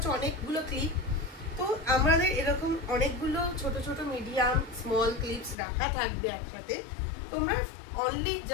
অনেকগুলো ক্লিপ। তো আমাদের এরকম অনেকগুলো ছোট ছোট মিডিয়াম স্মল ক্লিপস রাখা থাকবে একসাথে। তোমরা অনলি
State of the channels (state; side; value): drops out; right; at 5.6 s